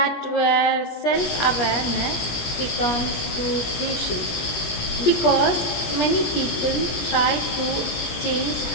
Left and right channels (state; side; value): late; right; 17 ms